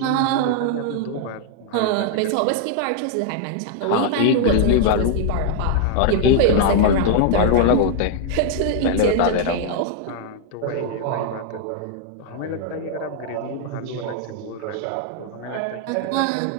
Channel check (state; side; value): different; both; correlation 0.00